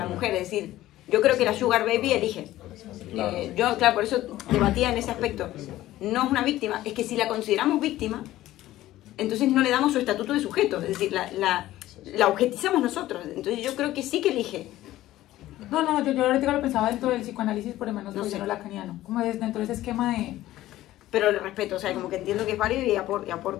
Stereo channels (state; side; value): quieter; right; 15.1 dB